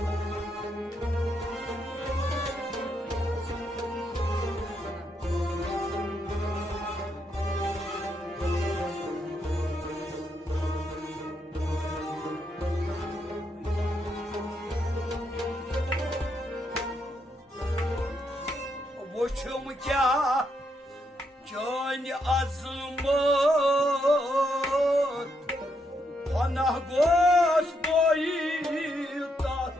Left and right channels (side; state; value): both; normal; correlation 0.78